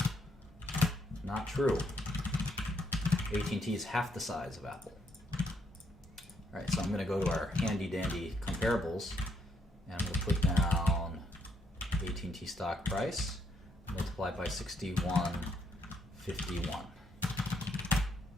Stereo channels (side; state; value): both; normal; correlation 0.74